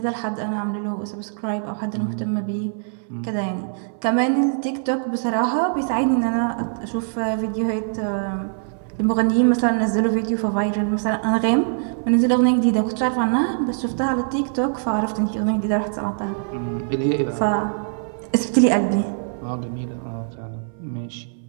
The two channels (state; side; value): silent; left; 61 dB below the other